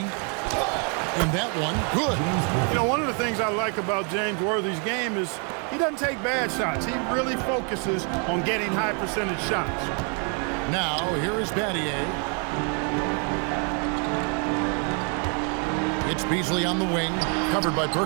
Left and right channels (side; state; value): left; quieter; 38.6 dB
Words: that one, good. You know, one of the things I like about James Worthy's game is he doesn't take bad shots. He really focuses on getting high percentage shots. Now, here is Battier. It's Beasley on the wing, covered by